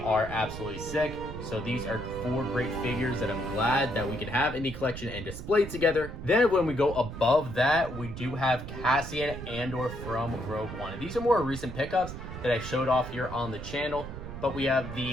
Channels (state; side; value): noise; right; rumble, 9 dB below the sound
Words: absolutely sick. So these are 4 great figures that I'm glad that we can have in the collection and display together. Then when we go above that, we do have Cassian Andor from Rogue One. And these are more recent pickups that I showed off here on the channel, but we have